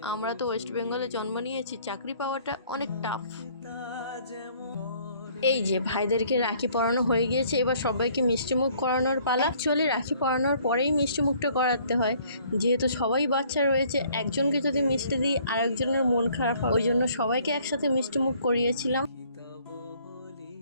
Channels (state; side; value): inverted; both; correlation -0.60